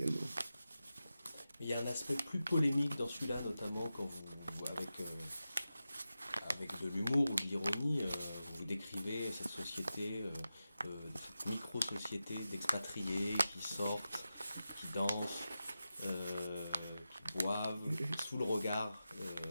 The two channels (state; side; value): inverted; both; correlation -0.92